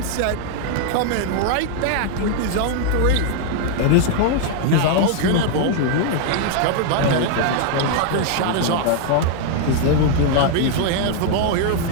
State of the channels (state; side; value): different; both; correlation 0.00